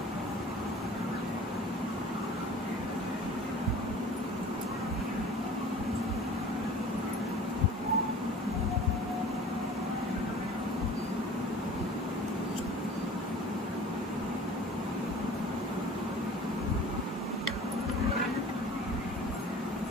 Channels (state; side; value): normal; both; correlation 0.44